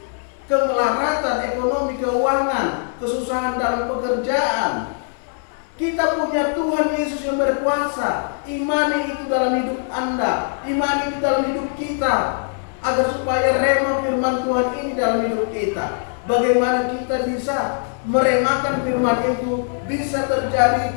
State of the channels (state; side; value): silent; right; 64 dB below the other